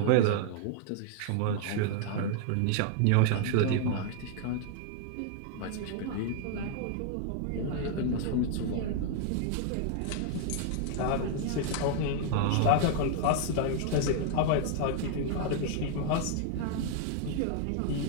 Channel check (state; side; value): different; both; correlation 0.00